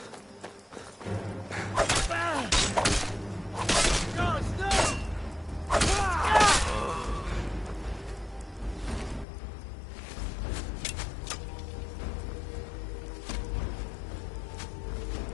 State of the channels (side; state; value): right; drops out; at 9.2 s